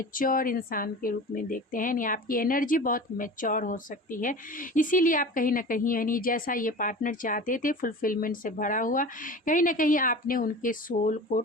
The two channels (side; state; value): both; normal; correlation 0.35